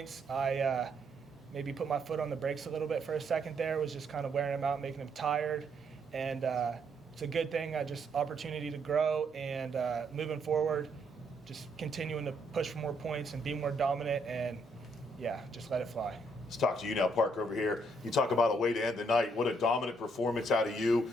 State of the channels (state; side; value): normal; both; correlation 0.72